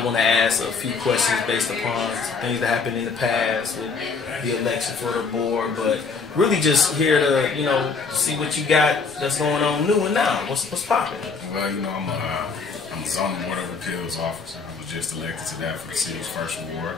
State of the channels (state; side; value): quieter; right; 4.9 dB